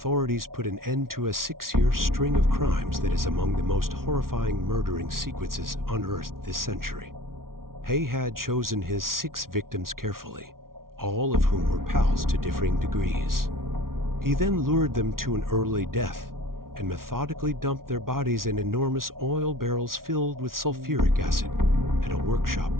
put an end to a 6-year string of crimes that is among the most horrifying murdering sequences unearthed this century. Haigh had chosen his 6 victims carefully, all of whom were pals to differing degrees. He then lured them to an early death and methodically dumped their bodies in enormous oil barrels filled with sulfuric acid at a workshop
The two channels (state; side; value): late; left; 0.93 ms